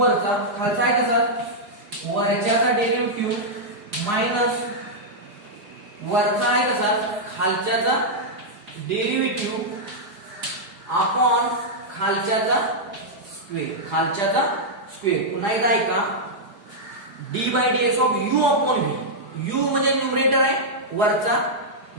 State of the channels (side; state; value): left; late; 4.7 ms